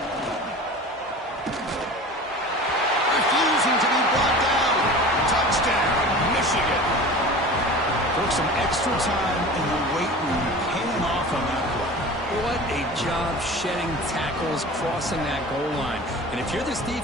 Refusing to be brought down. Touchdown, Michigan. Took some extra time in the weight room, paying off on that play. What a job shedding tackles, crossing that goal line. And if you're this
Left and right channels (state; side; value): normal; both; correlation 0.37